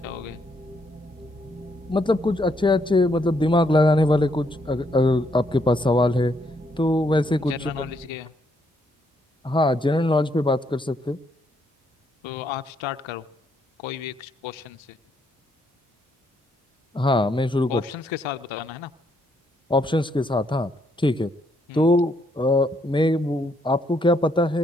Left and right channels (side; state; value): both; normal; correlation 0.73